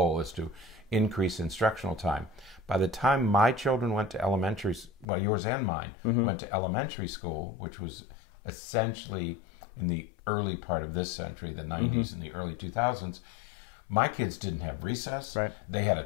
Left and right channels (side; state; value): right; drops out; at 5.1 s